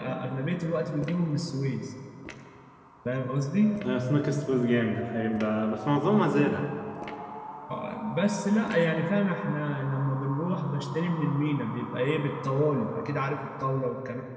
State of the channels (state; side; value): identical; both; correlation 1.00